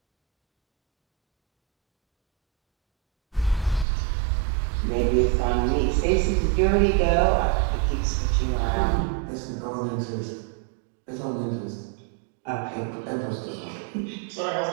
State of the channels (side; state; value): left; drops out; at 3.9 s